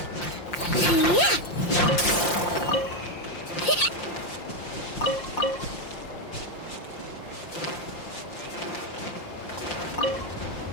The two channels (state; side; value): late; right; 5.7 ms